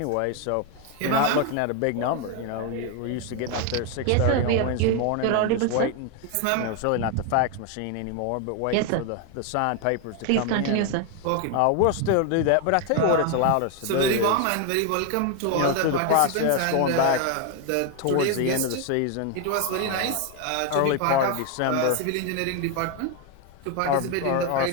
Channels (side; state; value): both; different; correlation 0.01